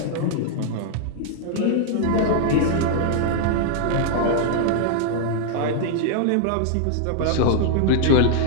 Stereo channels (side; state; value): both; different; correlation -0.01